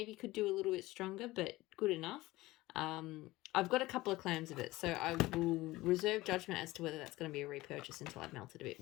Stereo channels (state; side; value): quieter; right; 18.9 dB